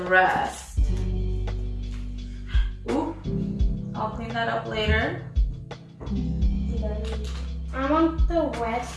rest. Ooh, I'll clean that up later. I want the rest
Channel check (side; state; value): both; identical; correlation 1.00